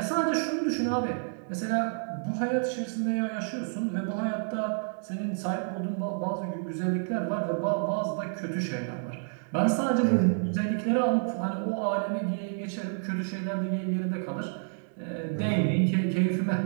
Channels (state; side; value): silent; left; 58 dB below the other